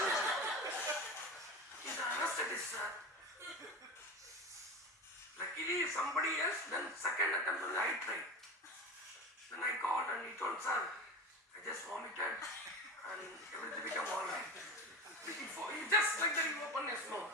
He's an anesthetist, sir. Luckily, somebody else, then second attempt only I tried. Then I called and he told, sir, I just vomited and everything became alright. He just like that, he opened his mouth.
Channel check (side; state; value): both; normal; correlation 0.26